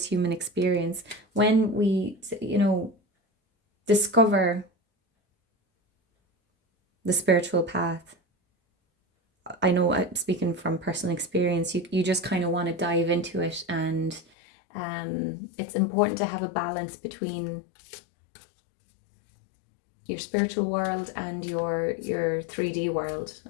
human experience. When we, discover the spiritual path, I know I'm speaking from personal experience, you just kind of want to dive into it, and it's important to have a balance between your spiritual world and your 3D world,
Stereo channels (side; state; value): right; drops out; at 14.2 s